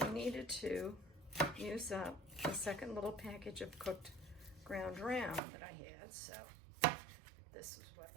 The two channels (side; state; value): left; drops out; at 5.4 s